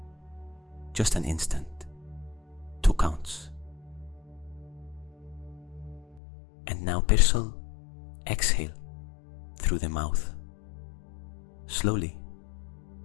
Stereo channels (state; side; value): drops out; right; at 6.2 s